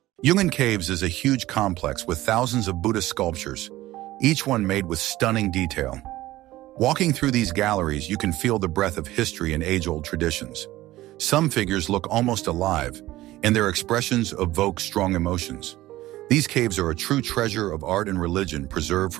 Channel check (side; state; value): left; quieter; 16.5 dB